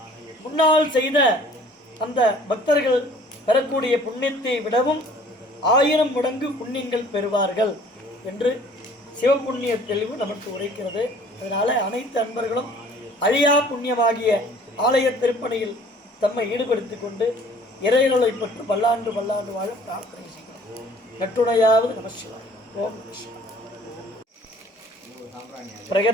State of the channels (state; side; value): normal; both; correlation 0.53